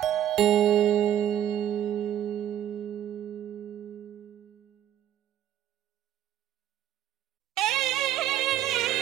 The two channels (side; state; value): left; quieter; 11.1 dB